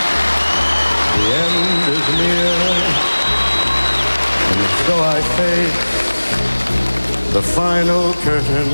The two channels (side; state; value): both; inverted; correlation -1.00